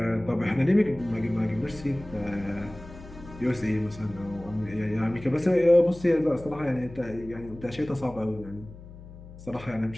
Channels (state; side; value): noise; left; hum, 16 dB below the sound